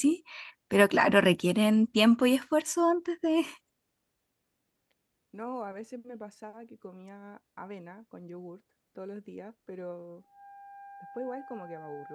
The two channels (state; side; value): identical; both; correlation 1.00